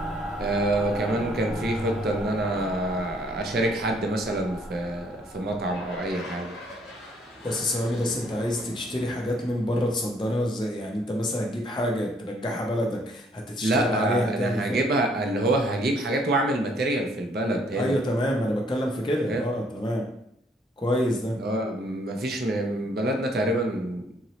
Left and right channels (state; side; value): normal; both; correlation 0.65